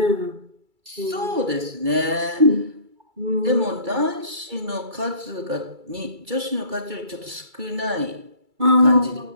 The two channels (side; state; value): left; late; 2.3 ms